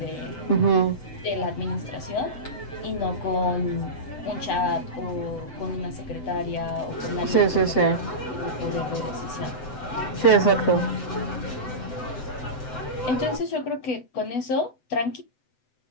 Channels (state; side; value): late; right; 7.9 ms